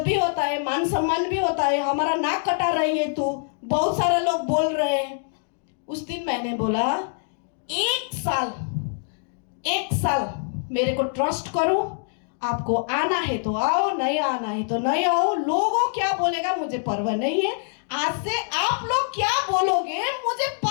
भी होता है, मान सम्मान भी होता है। हमारा नाक कटा रही है तू, बहुत सारे लोग बोल रहे हैं। उस दिन मैंने बोला 1 साल मेरे को ट्रस्ट करो, आपको आना है तो आओ, नहीं आना है तो नहीं आओ। लोगों क्या बोलेगा मुझे परवाह नहीं है। आज से आप लोग क्या बोलोगे मुझे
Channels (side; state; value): right; silent; digital silence